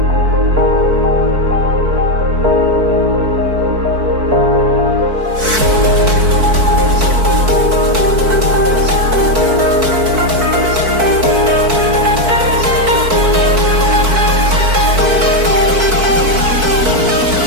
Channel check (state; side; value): late; left; 4.5 ms